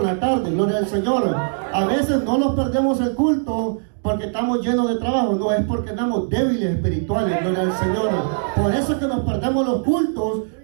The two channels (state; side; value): silent; left; digital silence